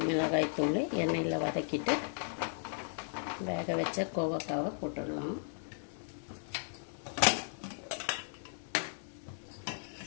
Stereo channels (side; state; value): right; silent; 54 dB below the other